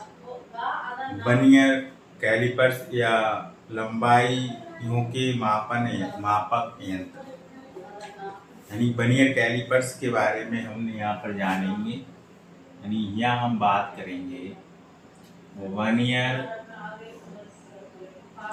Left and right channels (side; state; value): both; identical; correlation 1.00